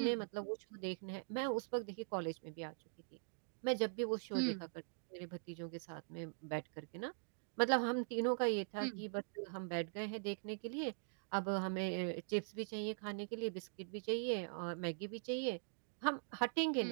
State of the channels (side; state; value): left; silent; digital silence